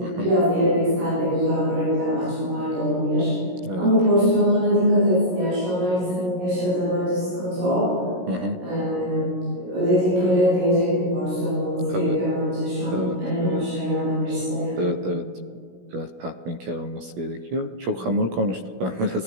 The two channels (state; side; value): late; left; 17 ms